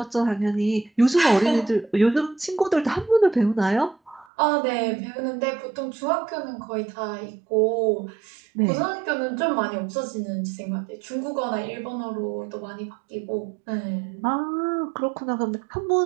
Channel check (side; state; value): left; drops out; at 4.2 s